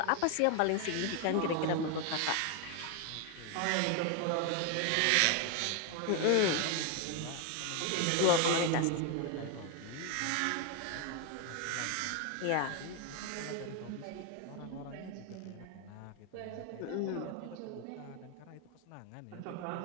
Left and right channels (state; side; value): different; both; correlation 0.01